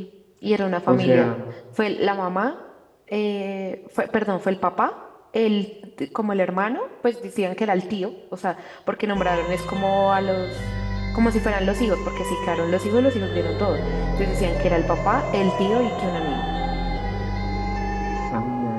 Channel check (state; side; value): identical; both; correlation 1.00